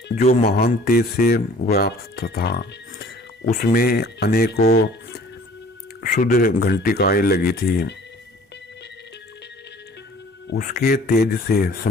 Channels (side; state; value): both; normal; correlation 0.51